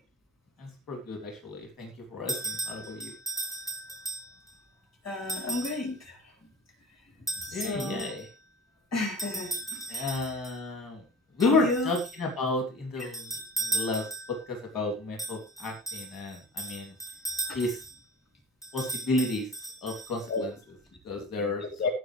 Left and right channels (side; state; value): both; normal; correlation 0.37